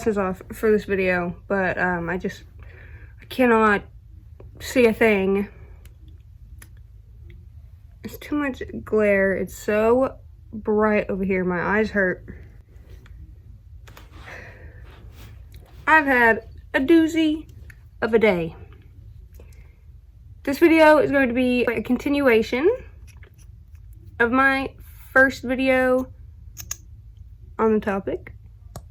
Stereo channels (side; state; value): both; identical; correlation 1.00